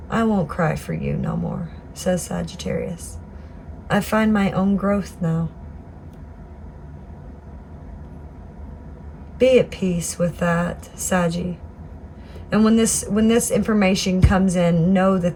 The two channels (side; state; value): both; identical; correlation 1.00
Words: I won't cry for you no more, says Sagittarius. I find my own growth now. Be at peace with that, Saggy. And when this information comes in, know